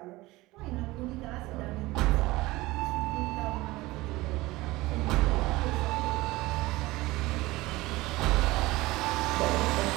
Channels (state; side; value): quieter; left; 19.8 dB